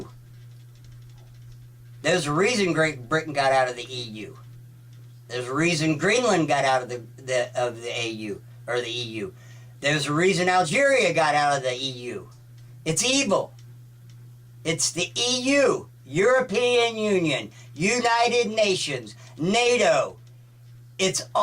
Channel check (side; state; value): both; identical; correlation 1.00